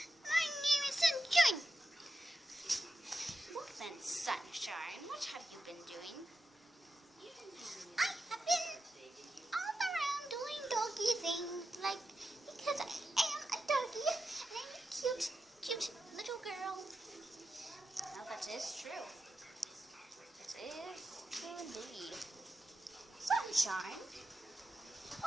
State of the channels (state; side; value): normal; both; correlation 0.89